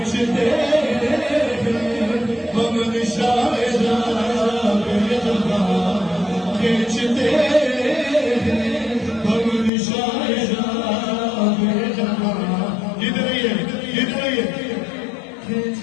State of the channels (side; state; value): right; drops out; at 9.7 s